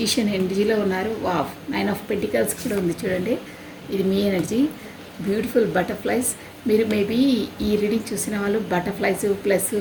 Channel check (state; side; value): identical; both; correlation 1.00